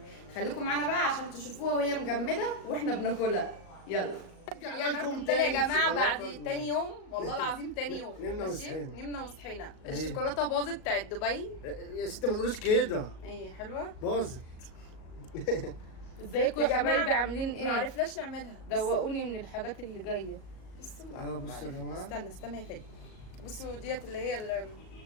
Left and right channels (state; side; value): late; right; 38 ms